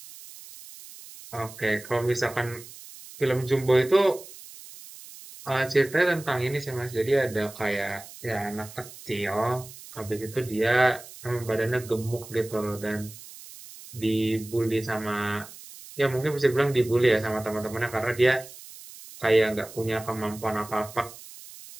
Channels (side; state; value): right; noise; hiss, 17 dB below the sound